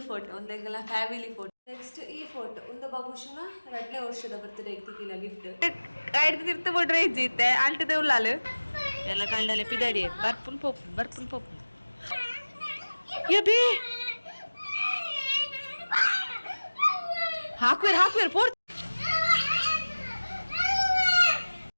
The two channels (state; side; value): inverted; both; correlation -1.00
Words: ಫೋಟೋ ಒಂದೆಲ್ಲ ಫ್ಯಾಮಿಲಿ ಫೋಟೋ ನೆಕ್ಸ್ಟ್ ಈ ಫೋಟೋ ಒಂದು ಬಾಬುಶನ 2ನೇ ವರ್ಷದ ಬರ್ತ್ಡೇ ಇಕ್ಕಿಲ್ಲ ಗಿಫ್ಟ್ ಐದು ತಿರ್ತ ಬಿಡ್ರೆ ಇಜ್ಜಿತ್ತೆ ಆಲ್ಟದ ಉಳ್ಳಾಲು ಎಲ್ಲ ಕಂಡಲೆ ಪಿದಾಡಿ ಬರ್ಪುನ್ ಪೋಪು ಯಬಿ ಹಾಕ್ವೇರ್ ಪೋರ್